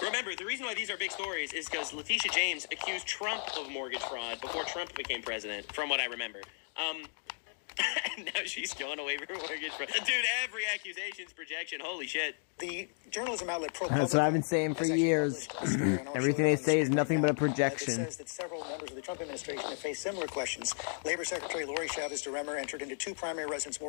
Remember, the reason why these are big stories is because Letitia James accused Trump of mortgage fraud before Trump became president, from what I remember. Now she's going away for mortgage fraud. Dude, every accusation's projection. Holy shit. The journalism outlet ProPublica. That's what I've been saying for years. Everything they say is nothing but a projection. It says that several members of the Trump administration have faced similar questions. Labor Secretary Lori Chavez DeRemer entered into 2 primary residence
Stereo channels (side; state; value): right; silent; 55 dB below the other